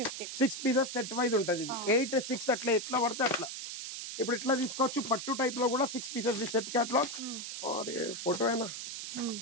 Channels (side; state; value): right; noise; hiss, 7 dB below the sound